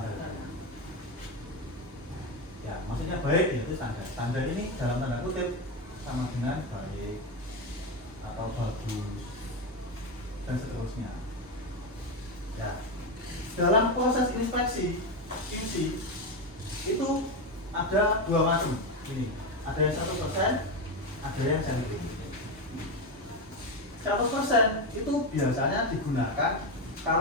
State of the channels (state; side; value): normal; both; correlation 0.12